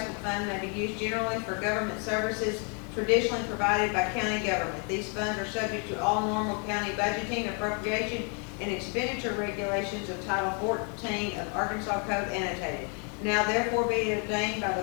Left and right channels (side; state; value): right; quieter; 38.2 dB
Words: Fund may be used generally for government services traditionally provided by county government. These funds are subject to all normal county budgeting, appropriation, and expenditure regulations of Title 14 of Arkansas Code annotated. Now therefore be it ordained by the